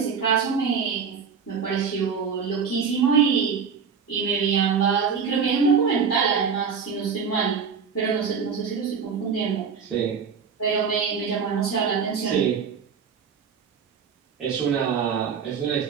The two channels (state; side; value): quieter; left; 6.3 dB